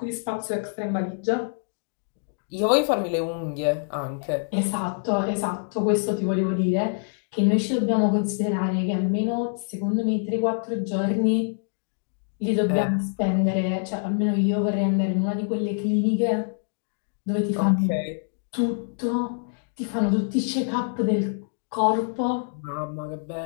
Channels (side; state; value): right; silent; digital silence